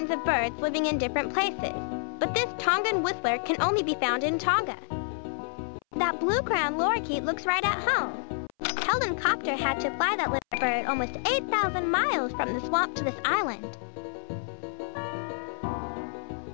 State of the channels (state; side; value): silent; right; 59 dB below the other